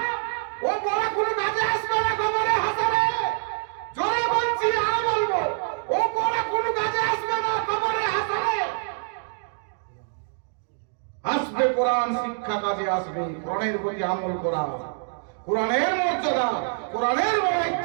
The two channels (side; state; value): left; silent; digital silence